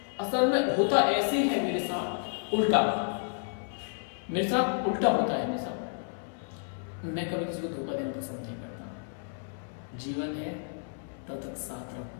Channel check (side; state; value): right; silent; 57 dB below the other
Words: असल में होता ऐसे है मेरे साथ उल्टा, मेरे साथ उल्टा होता है। मेरे साथ मैं कभी किसी को धोखा देना पसंद नहीं करता। जीवन है तब तक साथ रहो,